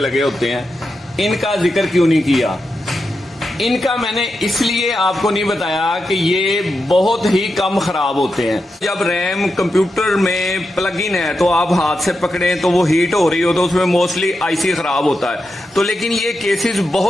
होते हैं, इनका जिक्र क्यों नहीं किया। इनका मैंने इसलिए आपको नहीं बताया कि ये बहुत ही कम खराब होते हैं। जब रैम कंप्यूटर में प्लग इन है तो आप हाथ से पकड़ें तो वो हीट हो रही हो तो उसमें मोस्टली आईसी खराब होता है। तो लेकिन ये केसेस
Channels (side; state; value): both; normal; correlation 0.88